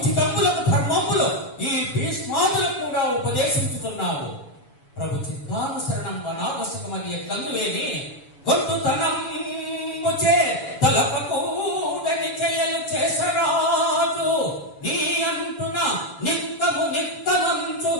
ధర్మములు ఈ భీష్మాదులకు కూడా ఉపదేశించుతున్నావు. ప్రభు చిత్తానుసరణం వనావశ్యకమని ఎట్లందువేని గొంతుతనముచే తలపకూడని చెయ్యలు చేసరాజు, నీ అంటున నిక్కము నిక్కమంచు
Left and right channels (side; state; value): right; late; 7.1 ms